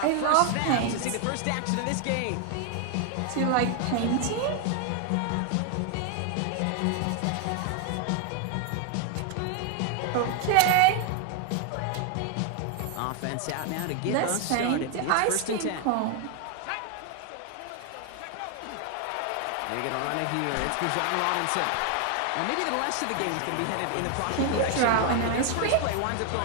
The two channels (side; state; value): both; different; correlation 0.01